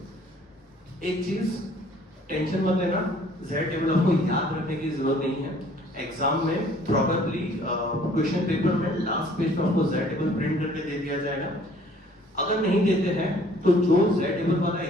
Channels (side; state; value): both; normal; correlation 0.56